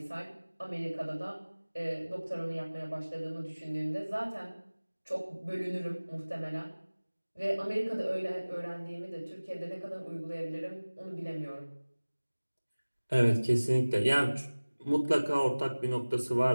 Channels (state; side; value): inverted; both; correlation -1.00